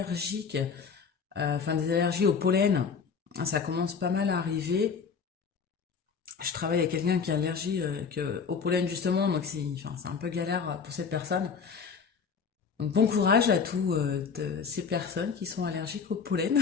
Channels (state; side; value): quieter; right; 5.9 dB